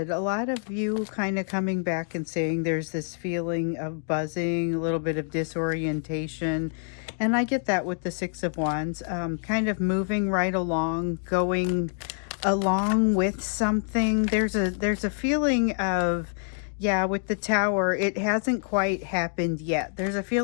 a lot of you kind of coming back and saying there's this feeling of buzzing, a little bit of disorientation. And I get that with the Six of Wands, kind of moving right along, going along with something. There's a feeling of, yeah, with the Tower, it hasn't quite happened yet. There's a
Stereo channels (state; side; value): silent; right; 60 dB below the other